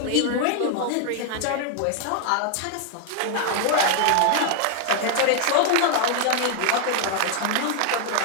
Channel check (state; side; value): different; both; correlation 0.00